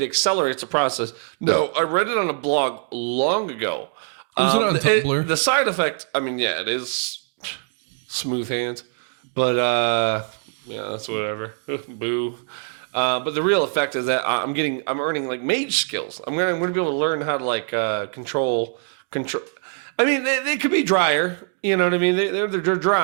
accelerates the process. No, I read it on a blog long ago. Was it on Tumblr? The side effect, I mean, yeah, it is smooth hands, but yeah, that's whatever. Boo. But the real effect is that I'm earning like mage skills. I'm gonna be able to learn how to like control. I mean, they could be drier. You know what I mean? They're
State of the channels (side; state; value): left; silent; 58 dB below the other